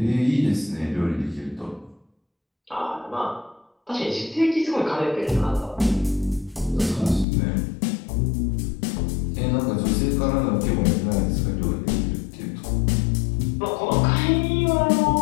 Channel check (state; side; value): drops out; right; at 7.2 s